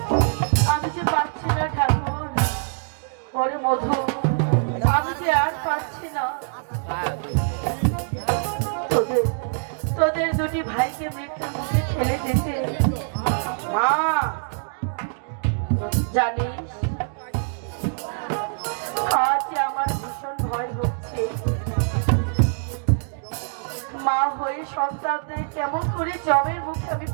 আমি যে পারছি না ঠাকুর। ওরে মধু, আমি যে আর পারছি না। তোদের দুটি ভাইকে মৃত্যুর মুখে ঠেলে দিতে। মা, জানিস, আজ আমার ভীষণ ভয় হচ্ছে। মা হয়ে সন্তানদের কেমন করে জমের মুখে আমি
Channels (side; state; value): left; silent; digital silence